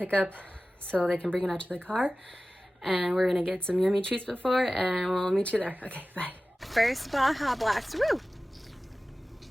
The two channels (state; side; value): normal; both; correlation 0.96